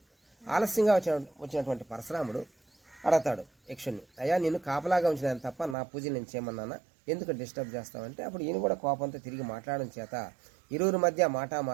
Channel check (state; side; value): drops out; left; at 5.8 s